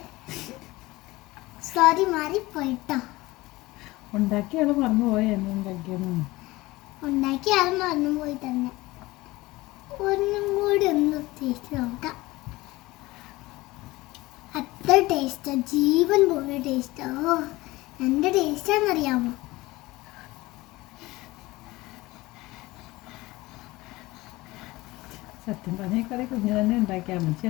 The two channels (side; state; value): right; quieter; 20.1 dB